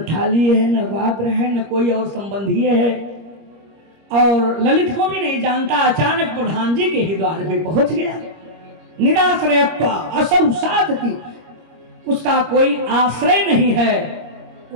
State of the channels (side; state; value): left; late; 25 ms